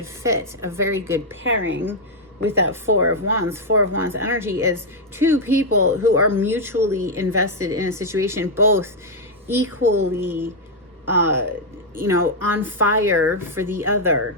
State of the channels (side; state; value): both; normal; correlation -0.02